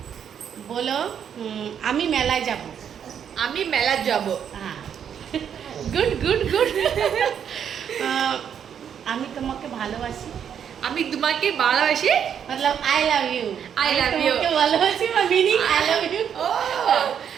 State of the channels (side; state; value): left; quieter; 8.4 dB